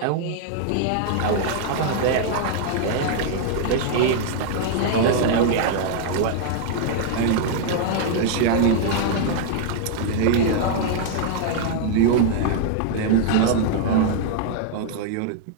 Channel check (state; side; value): different; both; correlation -0.01